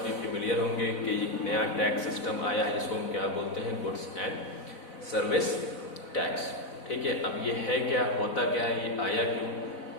फेमिलियर होंगे कि नया टैक्स सिस्टम आया है जिसको हम क्या बोलते हैं, गुड्स एंड सर्विस टैक्स। ठीक है, अब ये है क्या, होता क्या है, ये आया क्यों,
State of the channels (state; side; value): late; right; 4.0 ms